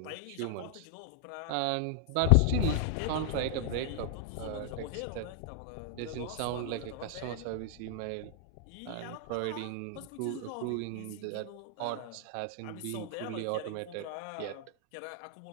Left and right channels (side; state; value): both; different; correlation 0.00